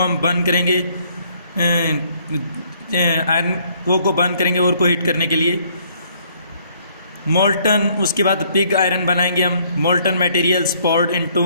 बर्न करेंगे, आयरन कोक को बर्न करेंगे और को हीट करने के लिए। मोल्टन, उसके बाद पिग आयरन बनाएंगे हम। Molten materials poured into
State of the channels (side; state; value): both; inverted; correlation -0.65